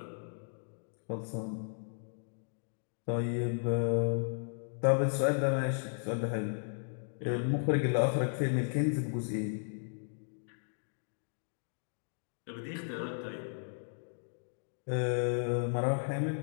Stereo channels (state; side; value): silent; right; digital silence